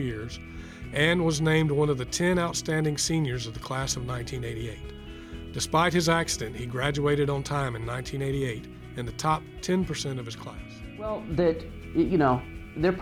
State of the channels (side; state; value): both; identical; correlation 1.00